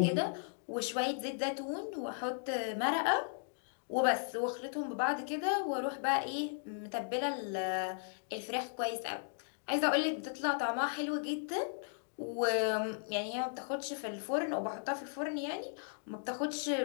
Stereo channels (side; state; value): right; silent; digital silence